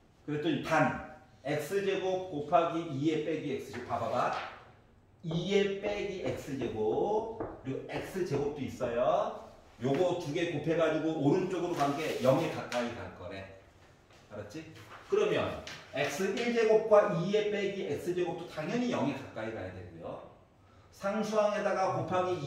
그랬더니 반 x제곱 곱하기 2의 빼기 x제곱 봐봐봐. 2의 빼기 x제곱 그리고 x제곱도 있어요. 요거 두 개 곱해가지고 오른쪽으로 간 게 0에 가까이 갈 거래. 알았지? 그러면 x1제곱과 2의 빼기 x제곱도 당연히 0에 가까이 가야 되고요. 상수항에다가 곱하기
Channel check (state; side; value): identical; both; correlation 1.00